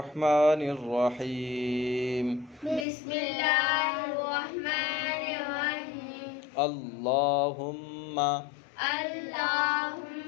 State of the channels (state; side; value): drops out; right; at 2.9 s